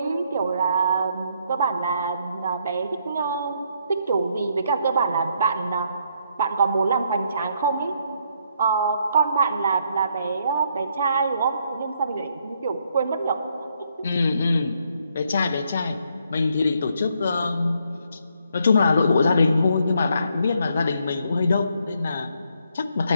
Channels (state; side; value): inverted; both; correlation -0.73